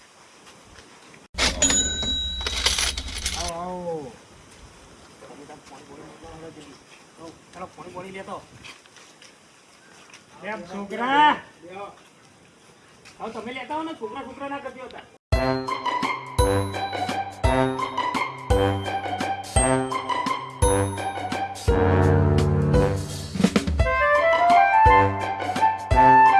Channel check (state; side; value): identical; both; correlation 1.00